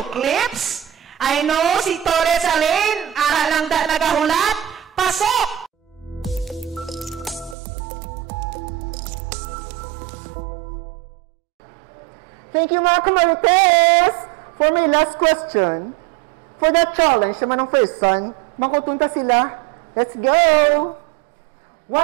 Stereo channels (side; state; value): left; drops out; at 7.6 s